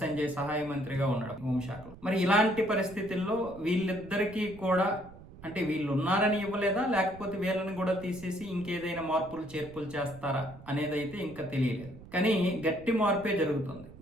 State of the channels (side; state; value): right; noise; rumble, 18 dB below the sound